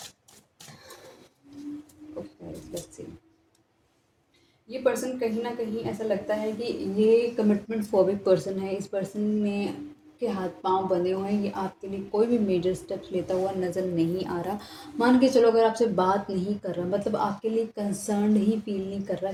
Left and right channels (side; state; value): both; identical; correlation 1.00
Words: Okay, let's see. ये पर्सन कहीं ना कहीं ऐसा लगता है कि ये कमिटमेंट फोबिक पर्सन है। इस पर्सन में के हाथ पांव बंधे हुए हैं, ये आपके लिए कोई भी मेजर स्टेप्स लेता हुआ नज़र नहीं आ रहा। मान के चलो, अगर आपसे बात नहीं कर रहा, मतलब आपके लिए कंसर्न ही फील नहीं कर रहा